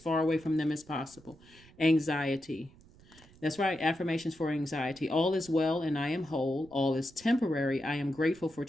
away from them as possible. Anxiety. That's right. Affirmations for anxiety. All is well and I am whole. All is temporary. I am grateful for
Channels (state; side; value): noise; right; rumble, 25 dB below the sound